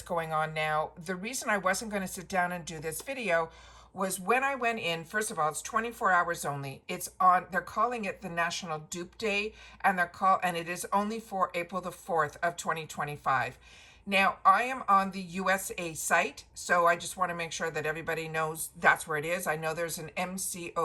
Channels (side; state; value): both; identical; correlation 1.00